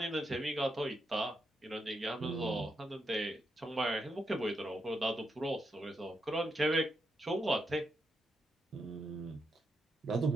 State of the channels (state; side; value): normal; both; correlation 0.83